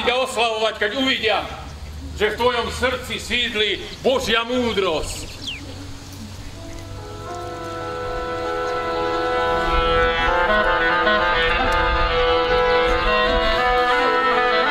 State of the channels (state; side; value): identical; both; correlation 1.00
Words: a oslavovať, keď uvidia, že v tvojom srdci sídli Božia múdrosť.